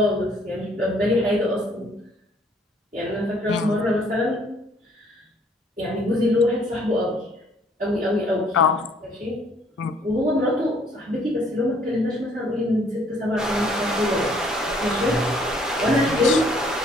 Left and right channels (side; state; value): both; normal; correlation 0.62